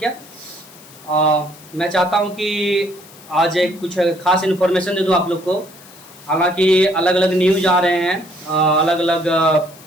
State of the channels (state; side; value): noise; left; hiss, 22 dB below the sound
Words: है, मैं चाहता हूं कि आज एक कुछ खास इन्फॉर्मेशन दे दूं आप लोग को। हालांकि अलग अलग न्यूज आ रहे हैं, अलग अलग